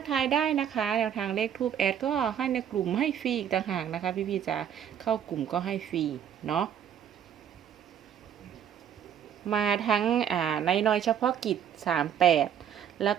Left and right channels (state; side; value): quieter; left; 9.0 dB